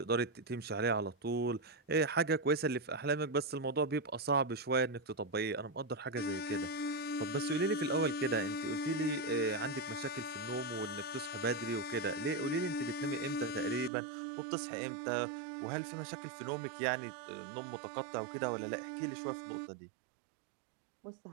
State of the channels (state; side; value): drops out; left; at 13.9 s